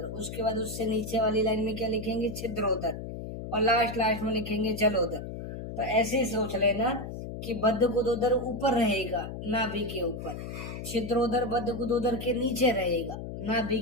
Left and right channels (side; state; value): left; noise; hum, 8 dB below the sound